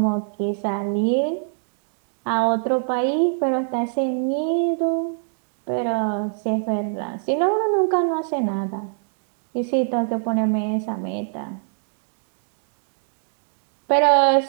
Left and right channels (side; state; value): left; silent; digital silence